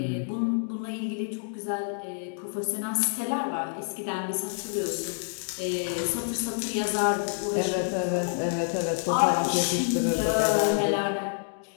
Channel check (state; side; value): silent; right; digital silence